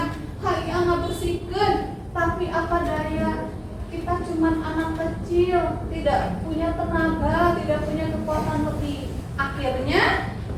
kalian nggak bersihkan. Tapi apa daya? Kita cuman anak kecil, tidak punya tenaga, tidak punya kekuatan lebih. Akhirnya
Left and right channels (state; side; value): identical; both; correlation 1.00